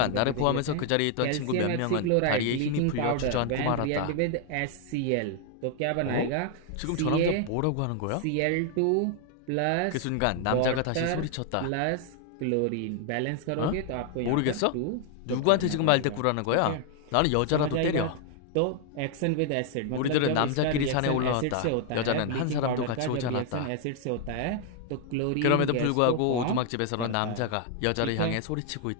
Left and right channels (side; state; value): both; different; correlation 0.00